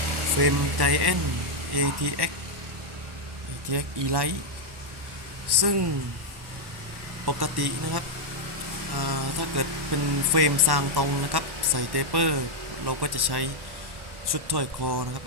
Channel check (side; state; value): left; late; 1.1 ms